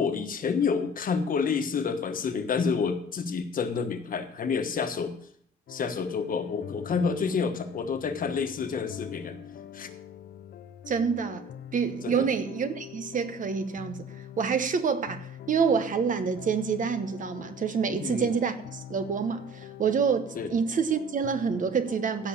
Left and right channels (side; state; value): both; normal; correlation 0.45